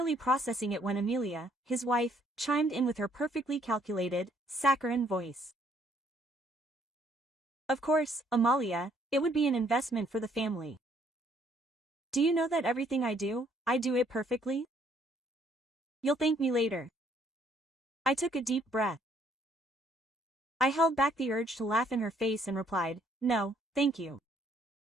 processing it when Amelia, his wife, chimed in with her perfectly calculated, saccharine voice. Of course, Amalia, it would be an investment for the family. Do you know that everything I do it perfectly? You'll thank me later. I took a deep breath. I held back the urge to laugh in her face and replied, no, thank you.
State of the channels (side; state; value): both; normal; correlation 0.66